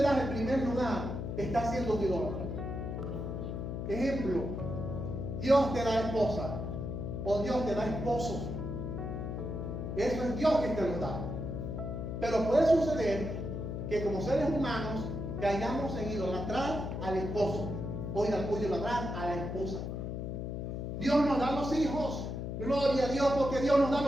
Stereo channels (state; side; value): noise; left; hum, 4 dB below the sound